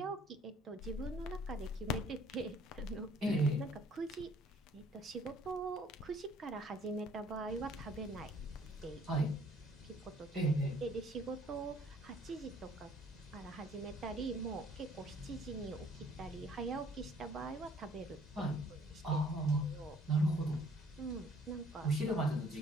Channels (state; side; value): normal; both; correlation 0.59